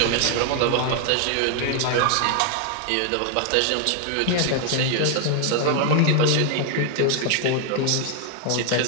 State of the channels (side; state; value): both; different; correlation 0.00